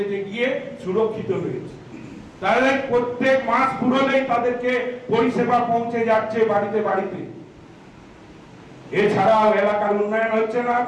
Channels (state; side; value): identical; both; correlation 1.00